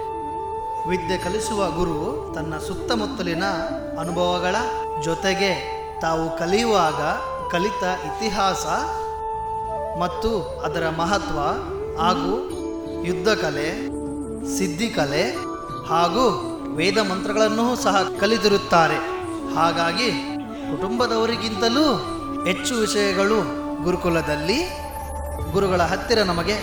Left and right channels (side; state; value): both; identical; correlation 1.00